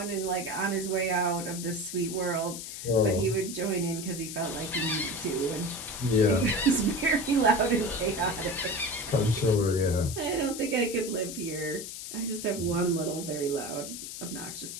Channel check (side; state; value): left; noise; hiss, 8 dB below the sound